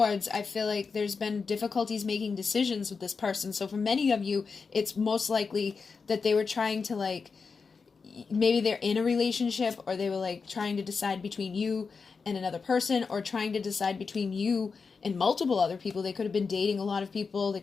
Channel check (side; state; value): right; quieter; 5.0 dB